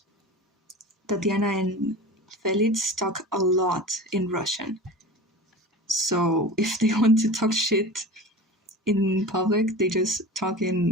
Tatiana and Felix talk a lot in Russian. So if they want to talk shit in public, they just talk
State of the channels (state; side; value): normal; both; correlation 0.33